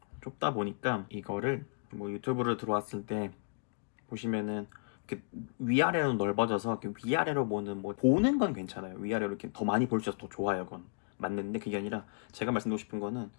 좁다 보니까 이거를 뭐 유튜브를 들어왔을 때 보시면은 이렇게 위아래로 넓어져서 이렇게 위아래로 보는 건 괜찮아요. 위아래로 이렇게 더 많이 볼 수 있어서 더 좋아요, 그건 맞는데 그게 아니라 제가 말씀드리고 싶은 거는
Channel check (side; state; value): right; quieter; 38.9 dB